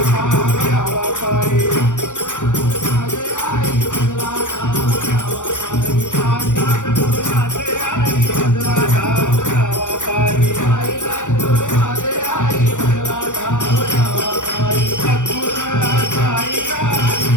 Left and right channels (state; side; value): late; right; 0.86 ms